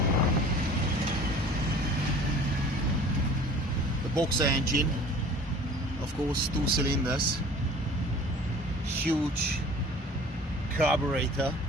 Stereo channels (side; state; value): both; normal; correlation 0.46